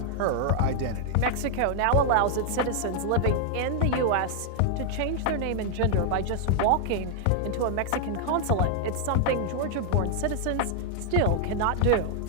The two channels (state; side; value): different; both; correlation 0.00